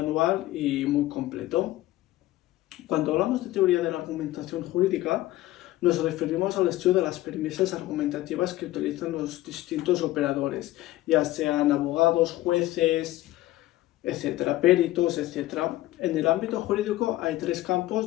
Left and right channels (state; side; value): quieter; right; 16.3 dB